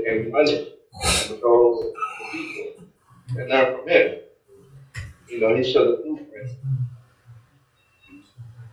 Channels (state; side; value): identical; both; correlation 1.00